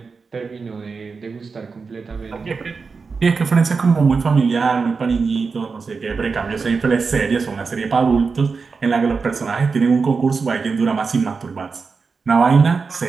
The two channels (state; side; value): quieter; left; 4.8 dB